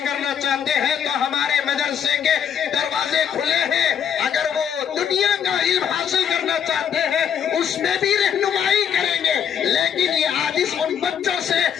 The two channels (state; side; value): quieter; right; 8.4 dB